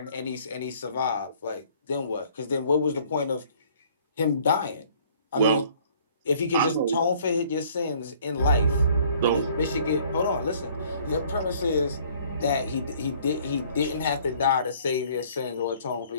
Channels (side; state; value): both; inverted; correlation -0.58